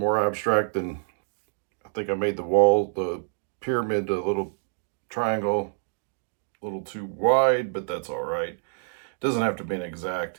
abstract than I think I made the wall, the pyramid, a little triangle, a little too wide, but that's all right. It doesn't have to be an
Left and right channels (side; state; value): left; silent; digital silence